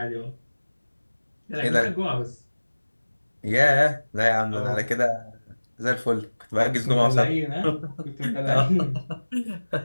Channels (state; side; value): inverted; both; correlation -1.00